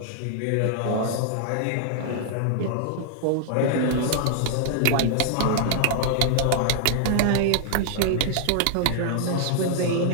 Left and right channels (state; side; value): different; both; correlation -0.01